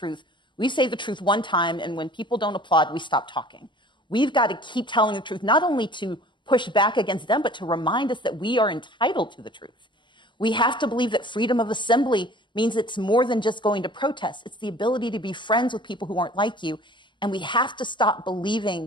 We say the truth one time, and when people don't applaud, we stop talking. We've got to keep telling the truth, not only to push back against them, but to remind us that we are entitled to the truth. We have to believe that freedom of assembly means it's more than just going to protest. It's the ability to be friends with people who aren't like you. And we have to stop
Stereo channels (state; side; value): late; right; 0.23 ms